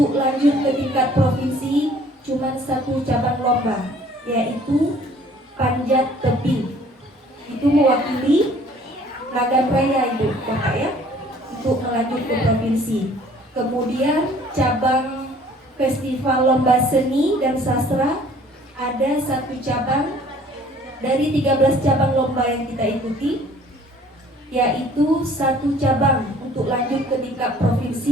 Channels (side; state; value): both; normal; correlation 0.55